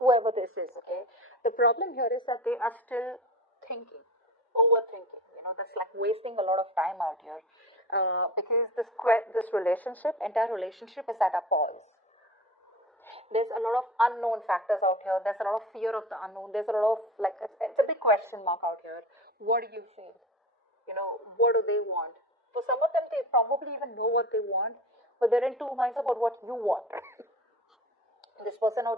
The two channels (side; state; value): both; normal; correlation 0.33